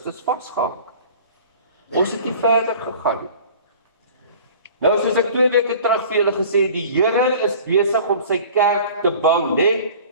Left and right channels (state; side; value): inverted; both; correlation -0.45